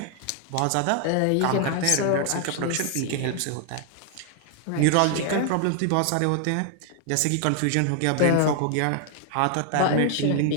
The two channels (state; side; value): different; both; correlation 0.00